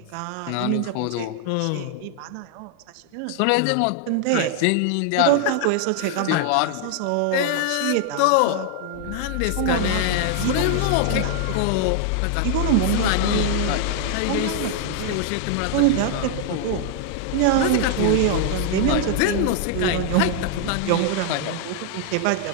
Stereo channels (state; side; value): different; both; correlation 0.00